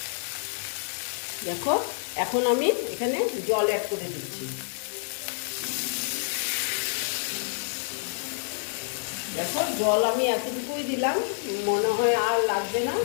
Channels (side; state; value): right; silent; 56 dB below the other